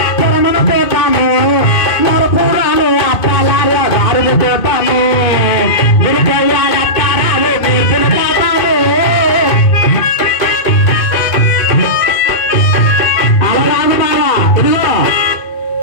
పోతాను విరికయ్యాడతారాలు నేర్పిన పోతాను. అలరాను బాగా ఇదిగో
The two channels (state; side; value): late; right; 2.3 ms